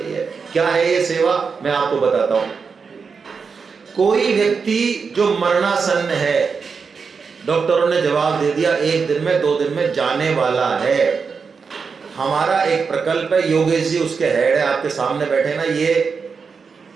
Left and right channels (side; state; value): left; quieter; 5.4 dB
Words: है। क्या है ये सेवा, मैं आपको बताता हूं। कोई व्यक्ति जो मरणासन्न है, डॉक्टरों ने जवाब दे दिया 1 दिन में 2 दिन में जाने वाला है, हमारा एक प्रकल्प है, योगेश जी उसके हेड है, आपके सामने बैठे ना, ये